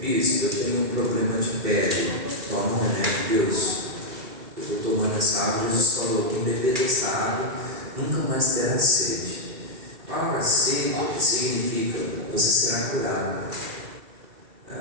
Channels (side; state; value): left; late; 2.3 ms